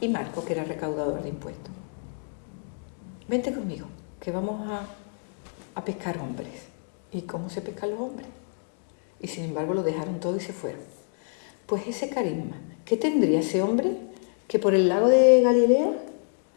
Marco, que era recaudador de impuestos. Vente conmigo, que vamos a pescar hombres. ¿Y cómo se pescan los hombres? Y sin embargo lo dejaron todo y se fueron. Pues ese carisma, ¿qué tendría ese hombre que por el lago de Galilea,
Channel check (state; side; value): silent; right; 60 dB below the other